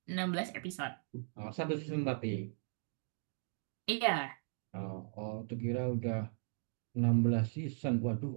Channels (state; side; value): silent; left; digital silence